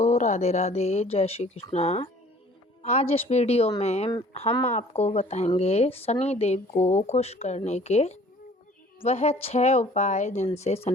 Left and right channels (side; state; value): both; normal; correlation 0.52